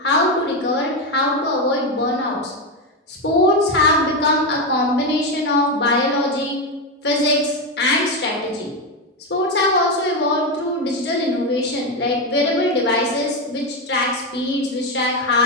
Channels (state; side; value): normal; both; correlation 0.11